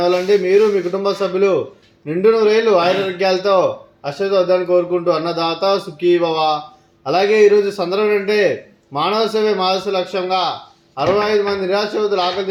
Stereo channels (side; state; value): both; identical; correlation 1.00